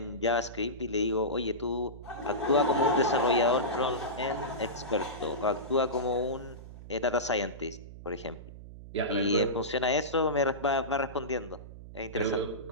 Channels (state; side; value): noise; right; hum, 14 dB below the sound